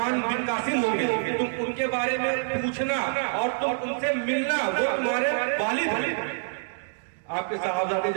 بن قاسم ہوں گے، تم ان کے بارے میں پوچھنا اور تم ان سے ملنا، وہ تمہارے والد ہیں۔ آپ کے صحابہ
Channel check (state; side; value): silent; left; digital silence